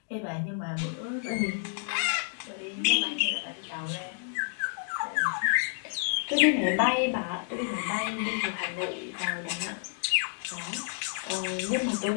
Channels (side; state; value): right; silent; digital silence